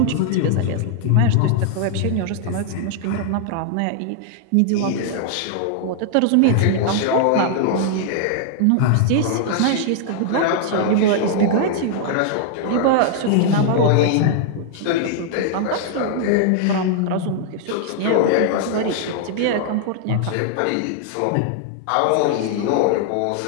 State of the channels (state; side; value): different; both; correlation 0.00